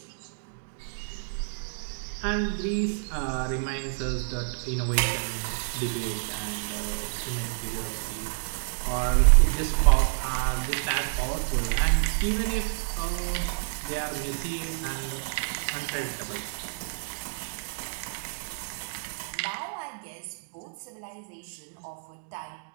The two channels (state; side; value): silent; left; digital silence